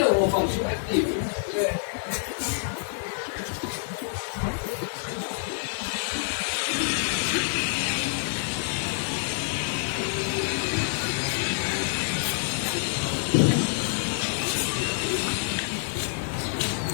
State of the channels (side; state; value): right; silent; digital silence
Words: phòng số mấy tiền?